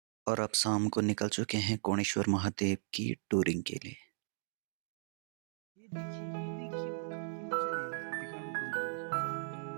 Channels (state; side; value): silent; left; digital silence